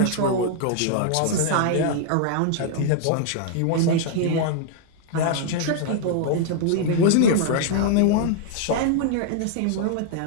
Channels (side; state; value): both; different; correlation -0.01